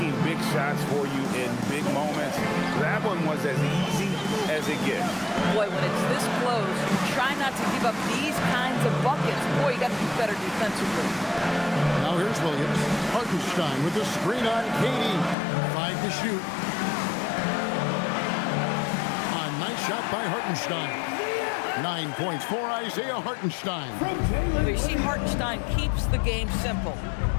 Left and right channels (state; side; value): drops out; right; at 15.4 s